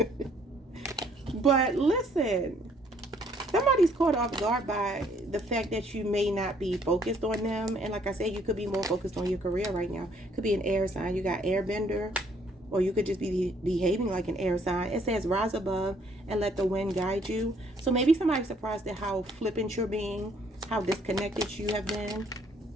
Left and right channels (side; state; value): both; normal; correlation 0.64